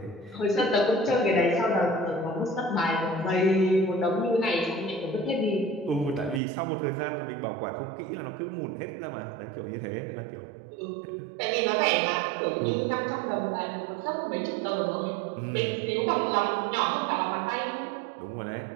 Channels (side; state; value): left; drops out; at 6.4 s